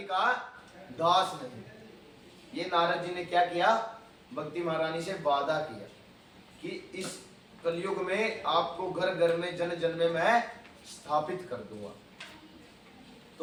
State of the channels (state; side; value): identical; both; correlation 1.00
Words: का दास नहीं। ये नारद जी ने क्या किया? भक्ति महारानी से वादा किया कि इस कलयुग में आपको घर घर में जन जन में मैं स्थापित कर दूंगा।